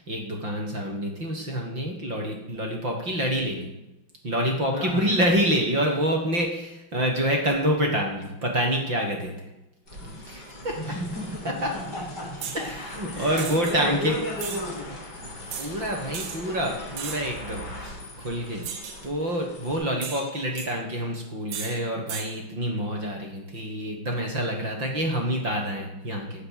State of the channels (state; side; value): late; left; 5.8 ms